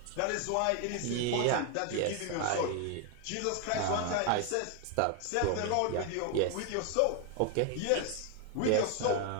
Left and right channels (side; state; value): both; different; correlation 0.01